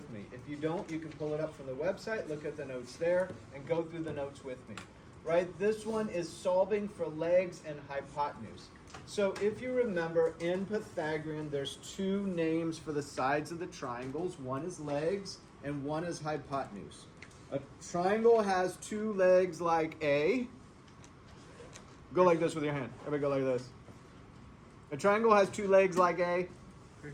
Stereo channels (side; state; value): both; identical; correlation 1.00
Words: me. If you don't, you can pull it up from the website, look at the notes there, and go through the notes with me. Right, this one is solving for legs and hypotenuse. So if you remember, in Pythagorean, there's 2 names for the sides of the triangles. One is legs and one is hypotenuse. A triangle has 2 legs like A. Go like this with your hand. Everybody go like this. A triangle has 2 legs like a